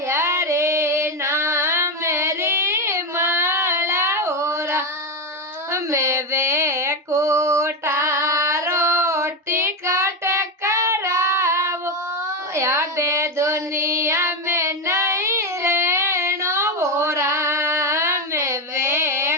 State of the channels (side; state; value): both; normal; correlation 0.10